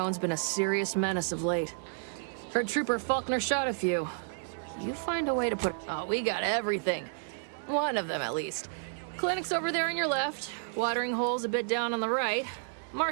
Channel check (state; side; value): silent; left; digital silence